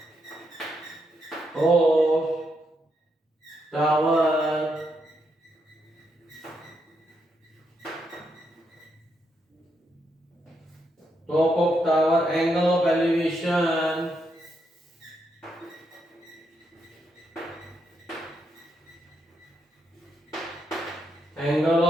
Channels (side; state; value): both; normal; correlation 0.80